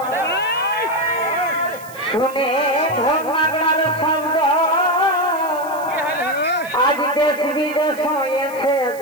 শুনে ধর্মার শব্দ আজ দেশ বিদেশ হয়েছে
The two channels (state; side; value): noise; right; hiss, 20 dB below the sound